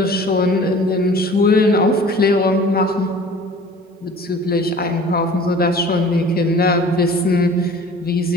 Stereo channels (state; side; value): normal; both; correlation 0.46